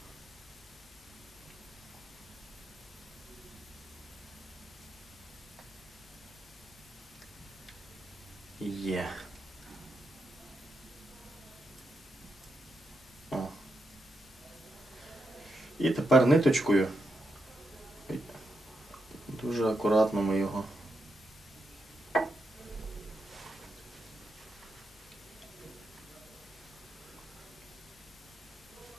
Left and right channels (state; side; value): normal; both; correlation 0.84